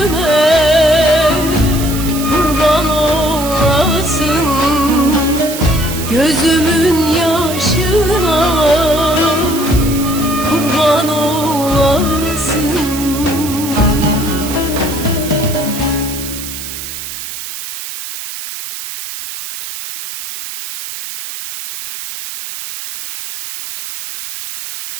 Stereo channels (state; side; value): noise; right; hiss, 9 dB below the sound